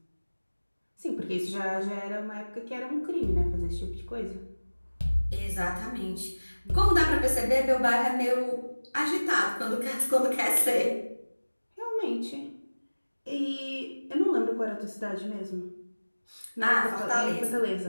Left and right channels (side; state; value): both; inverted; correlation -1.00